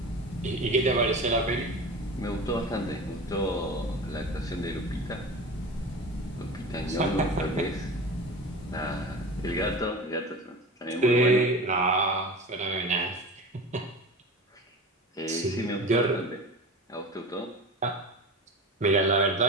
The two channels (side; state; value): both; normal; correlation 0.32